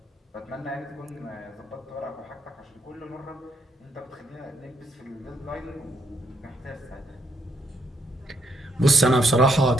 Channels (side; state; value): both; normal; correlation 0.75